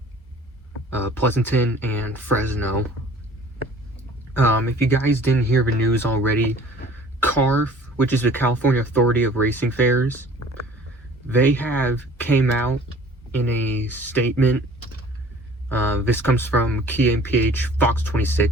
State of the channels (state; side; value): normal; both; correlation 0.50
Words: Pleasanton, and Fresno. If you guys didn't hear the news already, CARF, which is the California Authority of Racing Fairs, they have came out in a statement. This comes from KMPH Fox